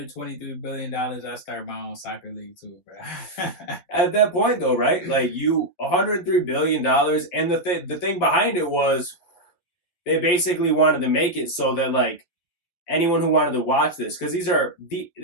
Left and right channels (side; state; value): right; late; 12 ms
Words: billion, I'd start my own soccer league too, bro. At that point, though, right? Like, $103 billion, and the thing behind it was they basically wanted to make it so that, like, anyone who wanted to watch this, because